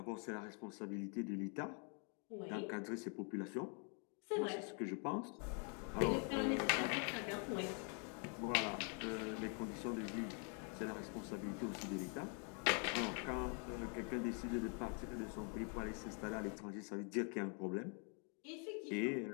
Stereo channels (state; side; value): quieter; right; 39.5 dB